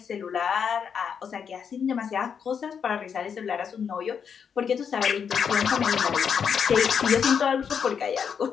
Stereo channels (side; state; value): right; quieter; 7.1 dB